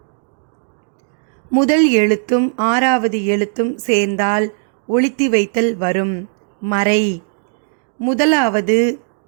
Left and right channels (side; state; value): left; silent; digital silence